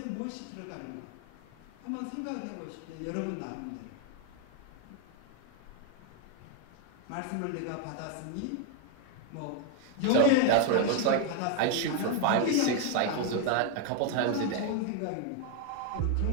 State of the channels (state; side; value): different; both; correlation 0.01